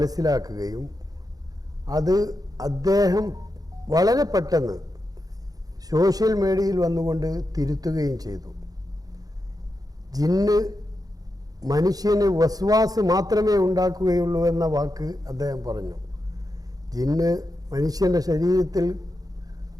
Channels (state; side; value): late; left; 0.18 ms